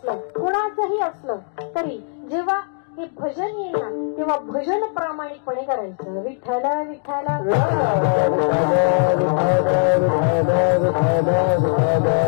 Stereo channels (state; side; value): silent; right; 65 dB below the other